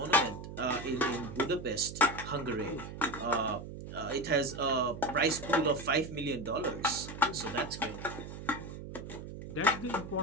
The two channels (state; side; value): noise; right; hum, 10 dB below the sound